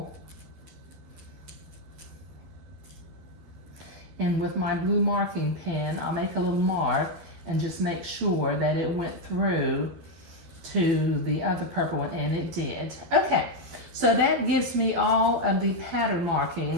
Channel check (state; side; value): late; left; 12 ms